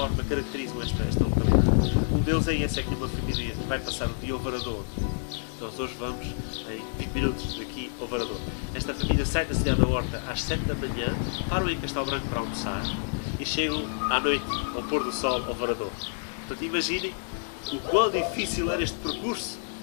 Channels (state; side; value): silent; right; 59 dB below the other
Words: caracterizam esta localidade. Um deles é esse, é que uma família vai passar o dia ao Varador. Nós hoje vamos em 20 minutos daqui ao Varador. Esta família sai da cidade da Horta às 7 da manhã, param em Castelo Branco para almoçar e chegam à noite, ao pôr do sol, ao Varador. Portanto, imaginem o quão difícil era este percurso